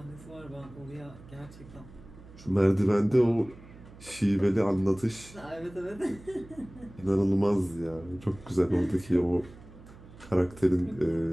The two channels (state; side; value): noise; right; hum, 20 dB below the sound